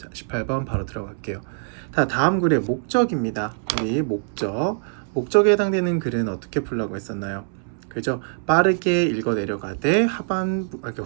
18번 바로 들어갈게요. 자, 다음 글의 목적입니다. 우리 목적에 해당되는 글은 어떻게 풀라고 했었나요? 그죠? 빠르게 읽어 내려가되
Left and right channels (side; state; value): left; silent; 63 dB below the other